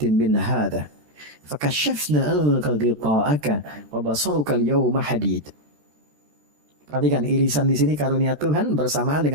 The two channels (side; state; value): left; late; 13 ms